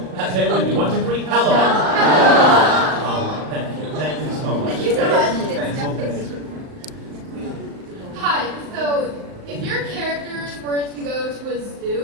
Say it with me. 1, 2, 3. Helluva. Thank you. Thank you so much. Thank you so much. Thanks. Hi, so if your characters were to go to a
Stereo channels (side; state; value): left; late; 38 ms